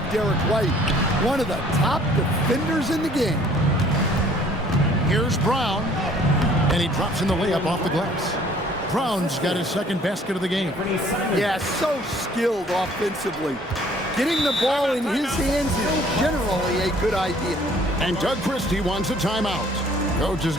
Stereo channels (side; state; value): both; normal; correlation 0.57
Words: Derek White, one of the top defenders in the game. Here's Brown. And he drops in the layup off the glass. Brown's got his second basket of the game. Yeah, so skilled offensively. Getting the ball in his hands is generally a good idea. And Doug Christie wants a timeout. Coach is